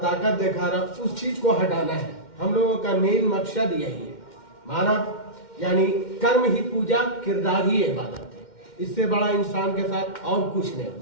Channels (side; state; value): right; late; 2.1 ms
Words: दिखा रहा, उस चीज़ को हटाना है। हम लोगों का मेन मकसद यही है। मानव यानी कर्म ही पूजा, किरदार ही इबादत है। इससे बड़ा इंसान के साथ और कुछ नहीं हो